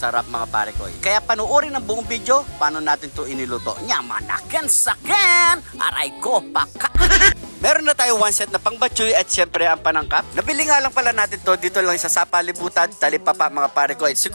mga parekoy. Kaya panuorin ang buong video, paano natin to iniluto. Nyamanaken saken! Aray ko, paka! Meron na tayo one set na pangbatchoy at syempre ang panangkap. Nabili nga lang pala natin to dito lang sa Sapalibutan, Talipapa mga parekoy.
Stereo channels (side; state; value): both; inverted; correlation -1.00